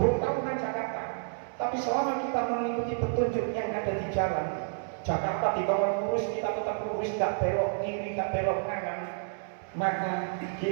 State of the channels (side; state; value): left; silent; digital silence